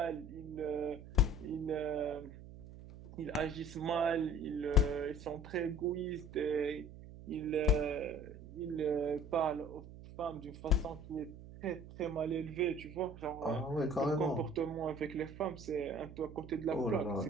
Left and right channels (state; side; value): noise; right; hum, 15 dB below the sound